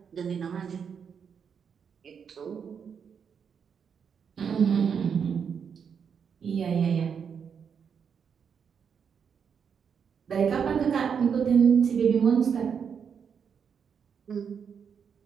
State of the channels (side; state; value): left; quieter; 6.9 dB